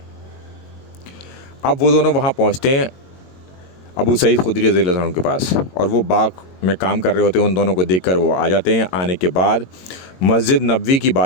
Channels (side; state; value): right; late; 22 ms